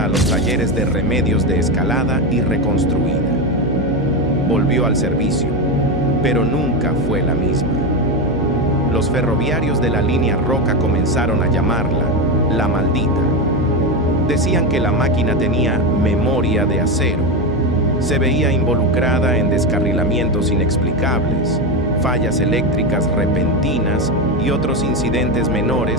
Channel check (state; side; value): noise; left; hum, 8 dB below the sound